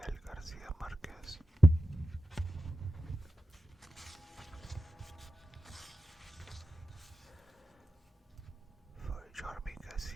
Garcia Marquez. For Jormi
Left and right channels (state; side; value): normal; both; correlation 0.93